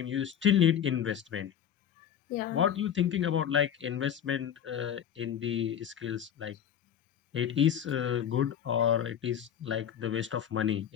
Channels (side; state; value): right; quieter; 9.3 dB